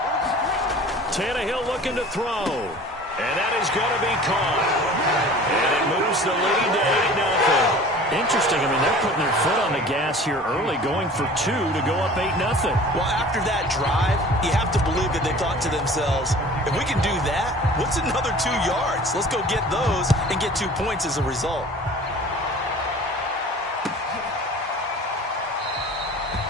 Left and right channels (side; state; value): both; normal; correlation 0.44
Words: Tannehill looking to throw. And that is going to be caught. And it moves the lead to 8-0. Interesting. I mean, they're putting their foot on the gas here early, going for 2 to go up 8-0. Well, after that drive, you have to believe that they thought to themselves, if we can do that, what's another 2 yards? Let's go get those and get 2 points as a result.